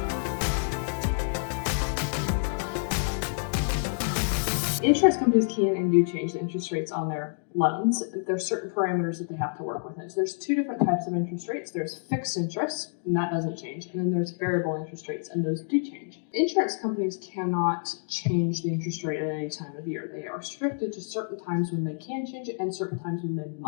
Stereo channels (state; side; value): silent; right; digital silence